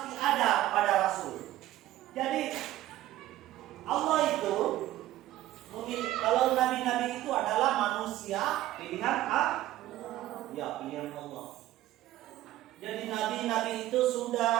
ada pada Rasul. Jadi Allah itu kalau nabi-nabi itu adalah manusia pilihan pilihan Allah. Jadi nabi-nabi itu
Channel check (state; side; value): quieter; left; 14.8 dB